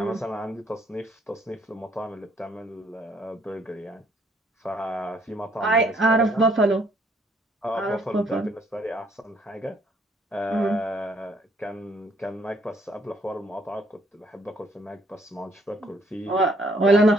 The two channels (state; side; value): normal; both; correlation 0.66